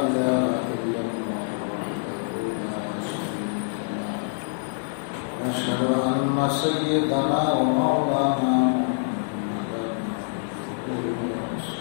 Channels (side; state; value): right; silent; digital silence